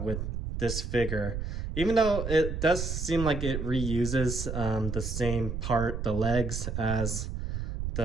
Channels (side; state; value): right; noise; rumble, 4 dB below the sound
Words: with this figure. Even though it does seem like it reuses the same part, the legs, as